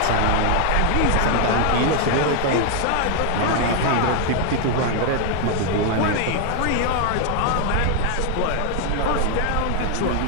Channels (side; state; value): both; different; correlation 0.00